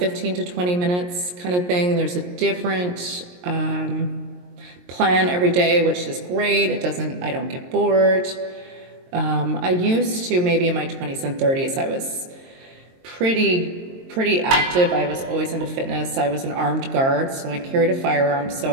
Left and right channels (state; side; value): late; left; 22 ms